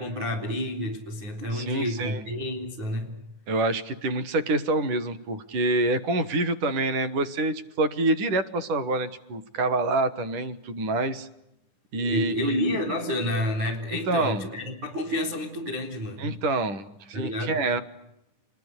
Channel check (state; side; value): late; left; 10 ms